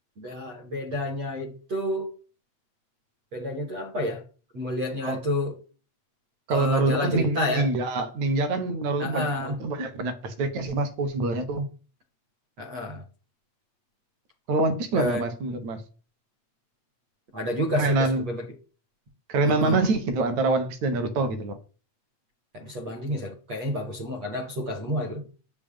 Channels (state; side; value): late; left; 8.4 ms